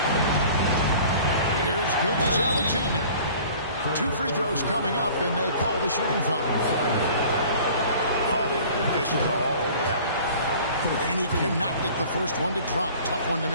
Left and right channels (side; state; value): both; inverted; correlation -0.47